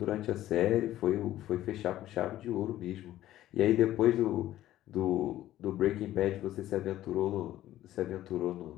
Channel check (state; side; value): quieter; right; 13.8 dB